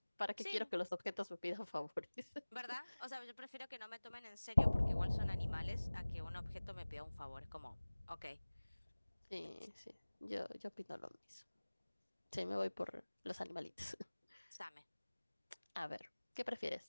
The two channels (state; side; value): inverted; both; correlation -1.00